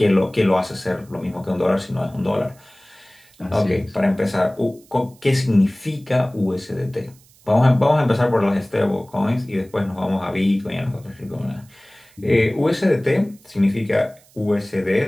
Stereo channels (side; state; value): right; noise; hiss, 29 dB below the sound